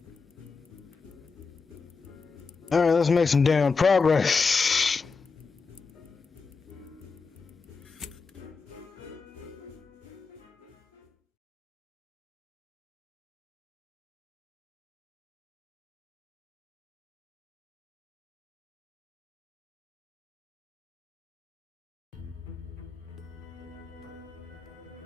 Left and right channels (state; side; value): quieter; right; 4.7 dB